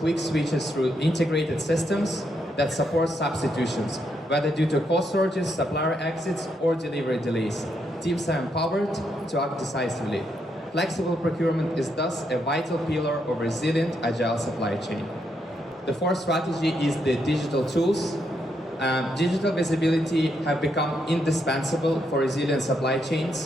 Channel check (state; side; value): normal; both; correlation 0.78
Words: switches through integrated systems that support substitutions, whether due to cost surges, supplier exits, or delivery delays. Teams are empowered to act decisively. Flexible procurement is thus a vital pillar of resilient, agile supply chain. The fourth strategy is the digital tools. Digital visibility have become indispensable for resilient supply